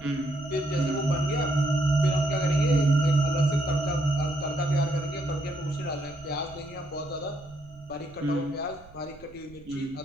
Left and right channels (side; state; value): right; noise; rumble, 23 dB below the sound